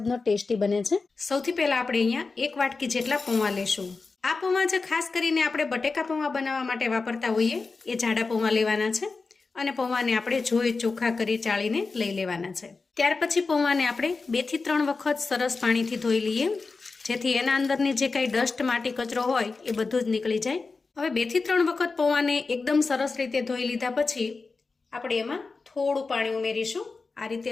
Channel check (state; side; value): quieter; right; 4.2 dB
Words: ટેસ્ટી બને છે। સૌથી પહેલા આપણે અહીંયા 1 વાટકી જેટલા પૌવા લેશું। આ પૌવા જે ખાસ કરીને આપણે બટેકા પૌવા બનાવવા માટે વાપરતા હોઈએ એ જાડા પૌવા લેવાના છે અને પૌવાને આપણે જોઈ ચોખ્ખા કરી ચાળીને લઈ લેવાના છે। ત્યાર પછી પૌવાને આપણે 2 થી 3 વખત સરસ પાણીથી ધોઈ લઈએ, જેથી એના અંદરની જે કાંઈ ડસ્ટ માટી કચરો હોય એ બધું જ નીકળી જાય। હવે 2 થી 3 વખત પૌવાને એકદમ સરસ રીતે ધોઈ લીધા પછી આપણે એમાં થોડું પાણી ઉમેરીશું। આ રીતે